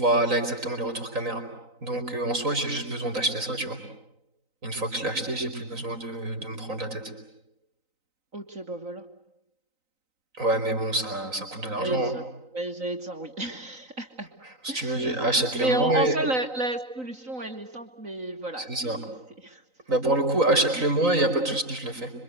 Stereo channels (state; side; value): late; left; 3.9 ms